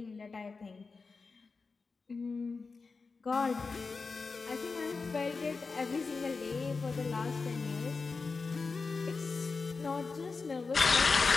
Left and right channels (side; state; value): right; quieter; 4.4 dB